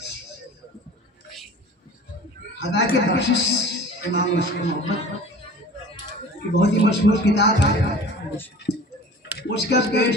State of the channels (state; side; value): normal; both; correlation 0.41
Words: हदा के बख्शिश इमाम मशहूर मोहब्बत की बहुत ही मशहूर किताब है। उसका